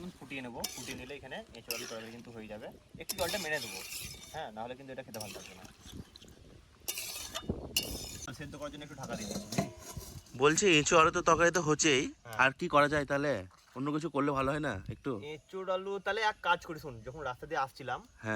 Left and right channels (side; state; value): both; identical; correlation 1.00